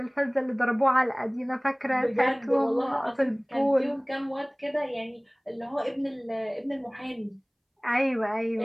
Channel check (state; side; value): identical; both; correlation 1.00